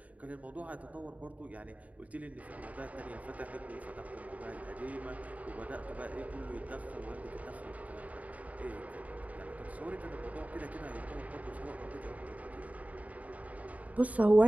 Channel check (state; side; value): late; left; 0.070 ms